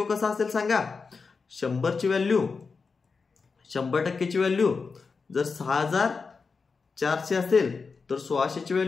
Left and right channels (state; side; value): quieter; right; 4.8 dB